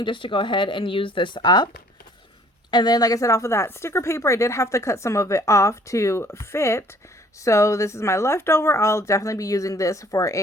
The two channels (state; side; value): normal; both; correlation 0.57